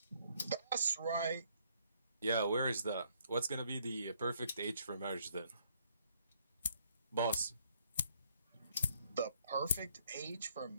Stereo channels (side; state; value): both; inverted; correlation -0.67